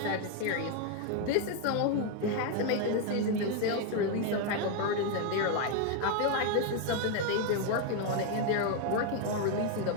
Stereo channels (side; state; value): both; different; correlation 0.01